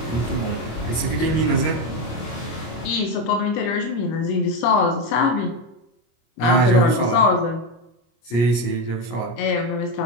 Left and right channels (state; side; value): late; right; 25 ms